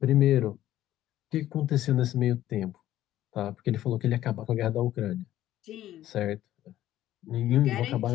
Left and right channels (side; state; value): right; quieter; 13.3 dB